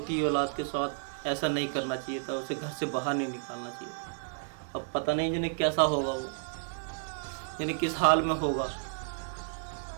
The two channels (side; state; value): left; silent; digital silence